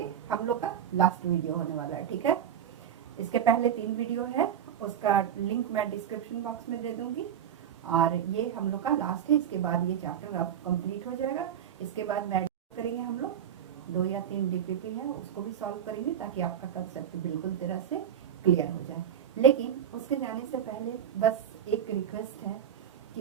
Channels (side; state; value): left; quieter; 9.2 dB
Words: हम लोग का लास्ट वीडियो होने वाला है, ठीक है। इसके पहले 3 वीडियो है, उसका लिंक मैं डिस्क्रिप्शन बॉक्स में दे दूंगी और ये हम लोग का लास्ट है। इसके बाद ये चैप्टर अब कंप्लीट हो जाएगा। इसके बाद मैं करेंगे हम लोग 2 या 3 डीपीपी है, उसको भी सॉल्व करेंगे ताकि आपका कंसेप्ट बिल्कुल तरह से क्लियर हो जाए। लेकिन उसके जाने से पहले बस एक रिक्वेस्ट है